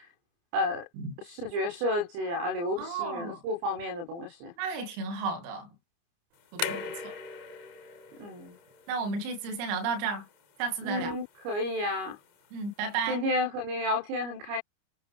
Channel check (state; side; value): late; left; 29 ms